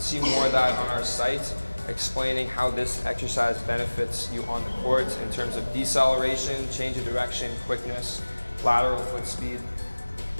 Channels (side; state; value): both; inverted; correlation -1.00